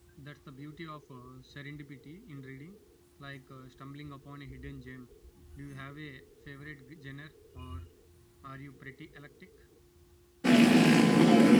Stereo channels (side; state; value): both; identical; correlation 1.00